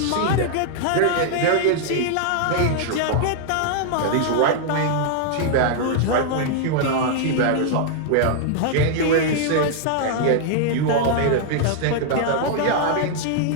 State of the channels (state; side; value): different; both; correlation -0.01